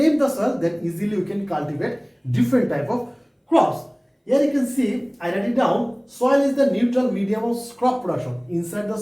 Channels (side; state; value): both; identical; correlation 1.00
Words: the soil, then easily we can cultivate different type of crops. Here you can see, I write it down, soil is the neutral medium of crop production. Inside the